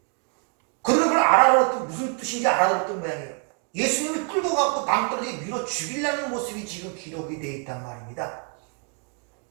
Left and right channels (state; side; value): quieter; left; 39.4 dB